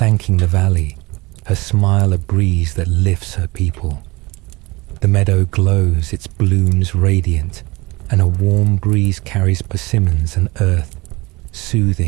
the valley, her smile a breeze that lifts her people. The meadow glows, its blooms radiant, and a warm breeze carries persimmons and earth,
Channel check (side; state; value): left; quieter; 23.3 dB